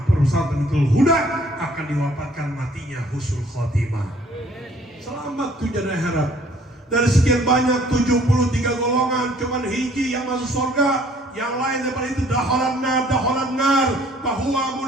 perusahaan Tamitul Huda akan diwafatkan matinya husnul khotimah. Selamat tujuan akhirat. Dari sekian banyak 73 golongan, cuman hiji yang masuk surga. Yang lain daripada itu daholan nar, bahwa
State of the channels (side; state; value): both; normal; correlation 0.59